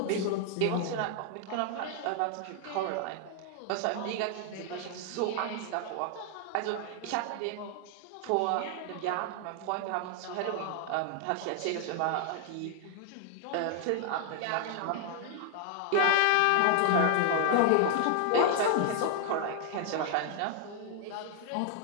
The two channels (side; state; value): both; different; correlation 0.00